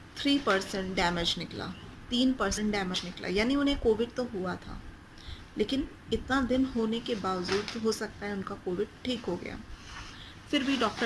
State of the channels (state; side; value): identical; both; correlation 1.00